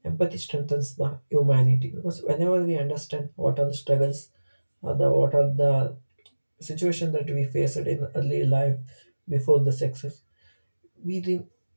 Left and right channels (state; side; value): inverted; both; correlation -1.00